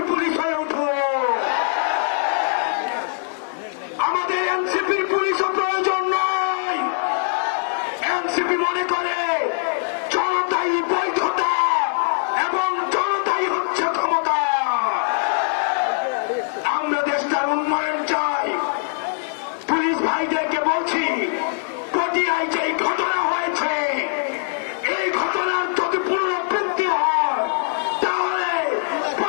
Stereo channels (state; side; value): silent; right; digital silence